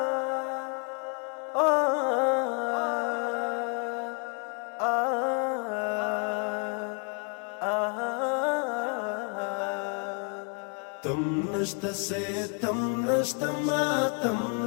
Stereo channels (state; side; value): quieter; right; 37.5 dB